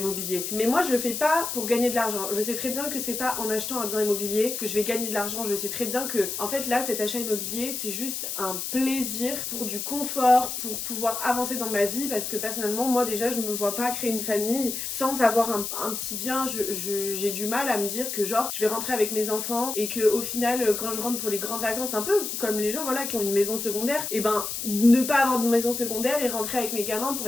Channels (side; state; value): left; noise; hiss, 4 dB below the sound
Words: Mais moi, je le fais pas pour gagner de l'argent. Je sais très bien que c'est pas en achetant un bien immobilier que je vais gagner de l'argent. Je sais très bien que, en fait, là, cet achat immobilier, c'est juste un plaisir pour du confort, pour pouvoir avancer dans ma vie. Parce que personnellement, moi, déjà, je me vois pas créer une famille sans avoir un petit bien. J'ai du mal à me dire que genre je vais rentrer avec mes enfants et que au final quand je rentre pour les grandes vacances, un peu comme les gens voilà qui ont une maison secondaire, et ben ne pas avoir de maison secondaire et rentrer avec mes gamins pour